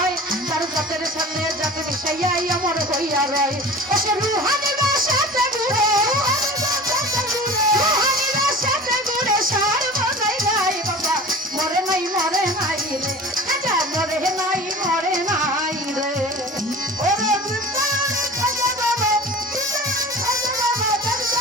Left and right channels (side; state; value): both; normal; correlation 0.39